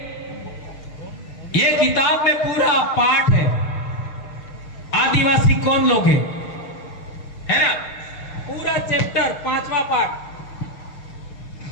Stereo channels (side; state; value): right; late; 6.4 ms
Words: ये किताब में पूरा पाठ है, आदिवासी कौन लोग हैं, है ना, पूरा चैप्टर 5वां पाठ।